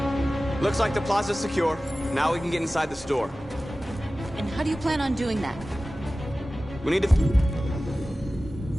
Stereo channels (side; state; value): both; normal; correlation 0.96